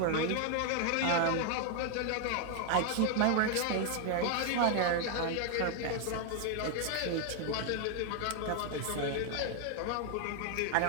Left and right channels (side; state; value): both; different; correlation 0.00